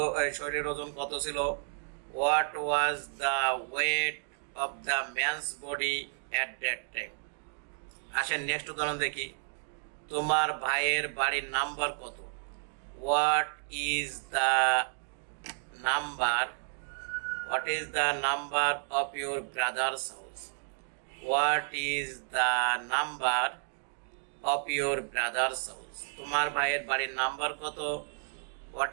শরীরের ওজন কত ছিল? What was the weight of the man's body at that time? আসেন next উদাহরণ দেখি। তোমার ভাইয়ের বাড়ির নাম্বার কত? What is the number? What is the number of your brother's house? What is the number of your brother's house? তোমার ভাইয়ের বাড়ির নাম্বার কত? What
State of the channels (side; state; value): left; silent; 57 dB below the other